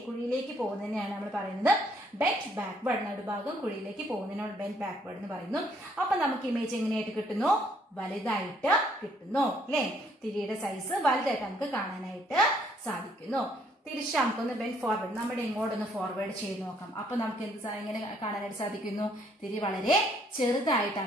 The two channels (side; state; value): both; normal; correlation 0.67